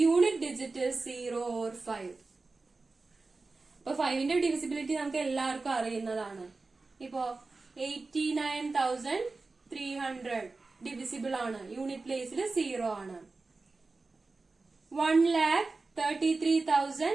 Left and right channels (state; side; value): quieter; left; 3.7 dB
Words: unit digit is 0 or 5. അപ്പൊ 5ന്റെ ഡിവിസിബിലിറ്റി നമുക്ക് എല്ലാവർക്കും അറിയുന്നതാണ്. ഇപ്പോ 89,300 ഡിവിസിബിൾ ആണ്, യൂണിറ്റ് പ്ലേസിൽ 0 ആണ്.